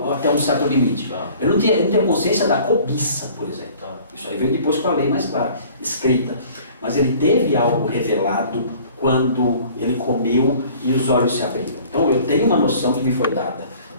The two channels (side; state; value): both; inverted; correlation -0.50